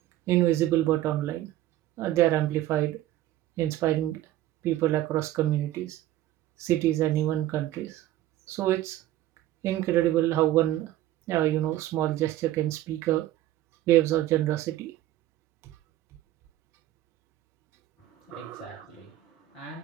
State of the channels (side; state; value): left; quieter; 14.3 dB